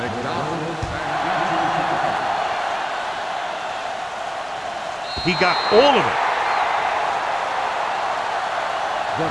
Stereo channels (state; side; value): identical; both; correlation 1.00